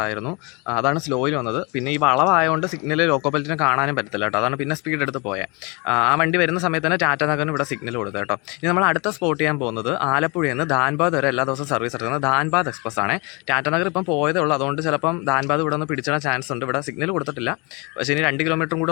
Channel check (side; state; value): right; quieter; 29.0 dB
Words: അതാണ് സ്ലോയിൽ വന്നത്. പിന്നെ ഈ വളവായതുകൊണ്ട് സിഗ്നൽ ലോക്കോ പൈലറ്റിനെ കാണാനും പറ്റത്തില്ല കേട്ടോ. അതാണ് പിന്നെ സ്പീഡ് എടുത്ത് പോയത്. ആ വണ്ടി വരുന്ന സമയത്ത് തന്നെ ടാറ്റാനഗറിന് ഇവിടെ സിഗ്നൽ കൊടുത്തു കേട്ടോ. ഇനി നമ്മൾ അടുത്ത സ്പോട്ട് ചെയ്യാൻ പോകുന്നത് ആലപ്പുഴയിൽ നിന്ന് ധാൻബാദ് വരെ എല്ലാ ദിവസവും സർവീസ് നടത്തുന്നത് ധാൻബാദ് എക്സ്പ്രസ് ആണ്. ടാറ്റാനഗർ ഇപ്പം പോയതേ ഉള്ളൂ, അതുകൊണ്ട് ചിലപ്പം ധാൻബാദ് ഇവിടെ ഒന്ന് പിടിച്ചിടാൻ ചാൻസ് ഉണ്ട്. ഇവിടെ സിഗ്നൽ കൊടുത്തിട്ടില്ല, പക്ഷേ ഇനി 2 കിലോമീറ്ററും